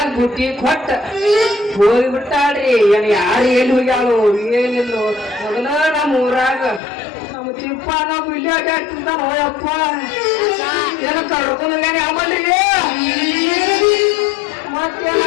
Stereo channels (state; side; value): drops out; right; at 6.8 s